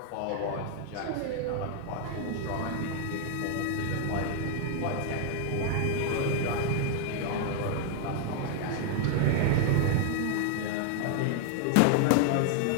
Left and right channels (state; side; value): different; both; correlation 0.00